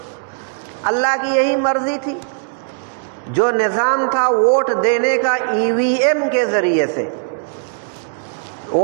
اللہ کی یہی مرضی تھی۔ جو نظام تھا ووٹ دینے کا ای وی ایم کے ذریعے سے،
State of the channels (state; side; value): silent; left; 67 dB below the other